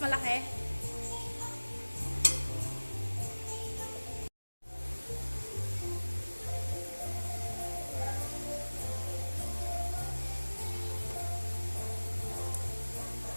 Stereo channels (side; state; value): both; inverted; correlation -1.00